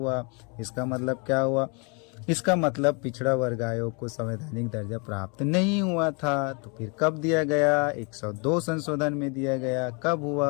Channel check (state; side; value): quieter; right; 33.5 dB